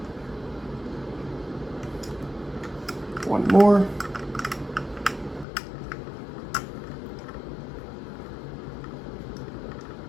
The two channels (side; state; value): right; drops out; at 5.5 s